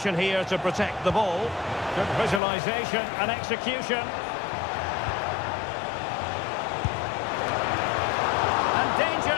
here to protect the ball. Good visualisation and execution. And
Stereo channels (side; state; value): right; drops out; at 2.4 s